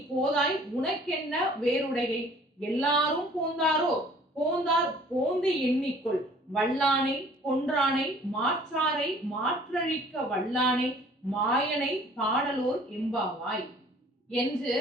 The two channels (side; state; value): both; normal; correlation 0.53